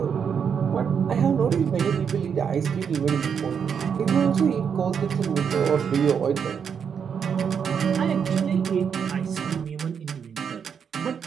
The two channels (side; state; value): left; quieter; 7.1 dB